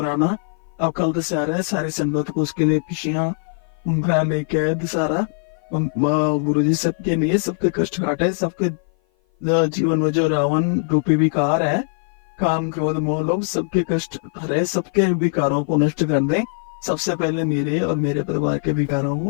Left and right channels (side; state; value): right; silent; 56 dB below the other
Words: अब कल दशहरा है, सारी संगत को उसके लिए खुशियां उम्र लेके आए दशहरा। गुरु जी सबके लिए, सबके कष्ट काटे, सबके जीवन में जो रावण रूपी विकार है, काम क्रोध मोह लोभ, सबके कष्ट हरे, सबके विकारों को नष्ट कर दे। सबसे पहले मेरे और मेरे परिवार के विकारों